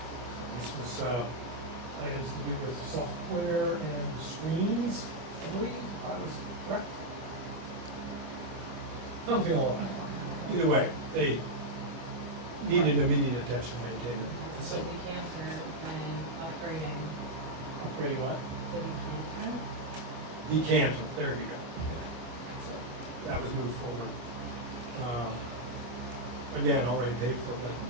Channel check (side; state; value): left; late; 24 ms